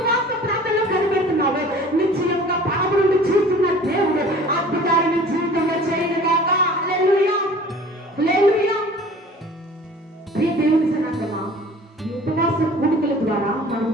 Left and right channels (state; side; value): normal; both; correlation 0.46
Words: ప్రార్థనలో కనిపెడుతున్నావో, నిశ్చయముగా పరము నుండి చూస్తున్న దేవుడు అద్భుతాలు నీ జీవితంలో చేయనుగాక. హల్లెలూయా, హల్లెలూయా. ప్రియ దేవుని జనాంగమా, ఈ ఉపవాస కూడికల ద్వారా మనం